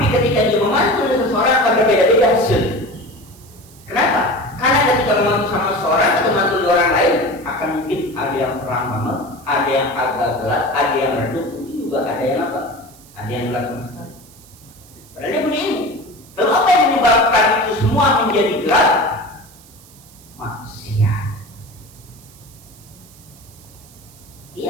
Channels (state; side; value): noise; right; hiss, 24 dB below the sound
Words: ketika dia memantul seseorang akan berbeda-beda hasil. Kenapa? Karena ketika memantul sama seseorang atau memantul di orang lain, akan mungkin ada yang terang banget, ada yang agak gelap, ada yang redup, mungkin juga ada yang apa? Ada yang gelap sama sekali. Padahal dia punya ilmu. Lalu apa yang menyebabkan itu semua menjadi gelap? Maksiat.